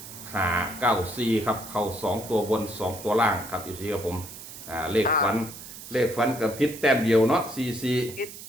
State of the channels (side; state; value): right; noise; hiss, 13 dB below the sound